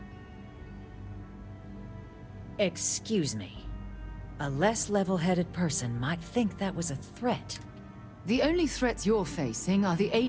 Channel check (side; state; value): both; identical; correlation 1.00